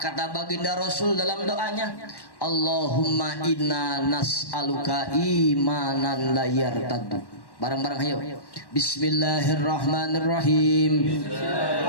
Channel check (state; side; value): late; right; 1.1 ms